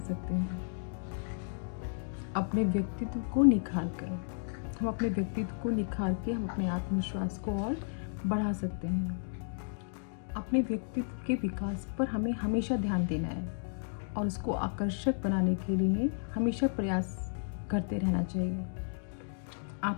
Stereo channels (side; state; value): right; silent; digital silence